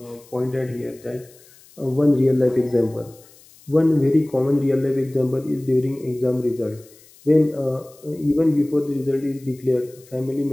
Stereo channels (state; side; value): noise; left; hiss, 26 dB below the sound